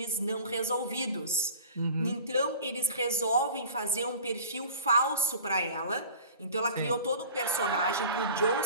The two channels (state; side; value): inverted; both; correlation -0.42